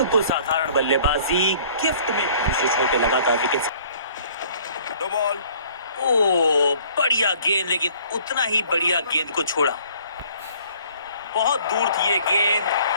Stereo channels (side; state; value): both; inverted; correlation -0.55